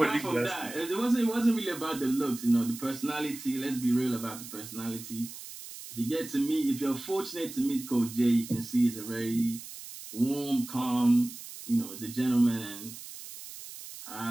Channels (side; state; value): right; noise; hiss, 13 dB below the sound